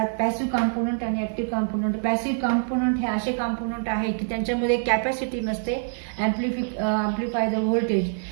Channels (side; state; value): left; silent; digital silence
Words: passive component आणि active component. Passive component हे असे कंपोनेंट आहे की त्यांच्यामध्ये कॅपॅसिटी नसते अँप्लिफाय द